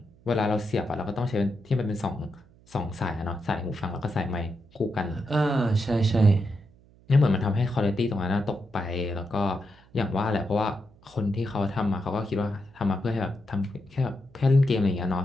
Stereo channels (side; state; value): right; noise; hum, 28 dB below the sound